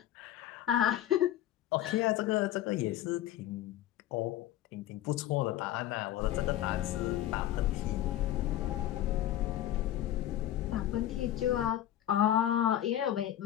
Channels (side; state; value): right; quieter; 12.7 dB